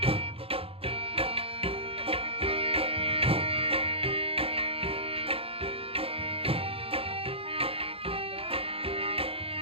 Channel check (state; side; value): late; left; 0.27 ms